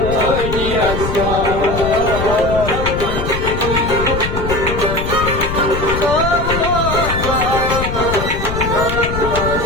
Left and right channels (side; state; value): left; noise; rumble, 4 dB below the sound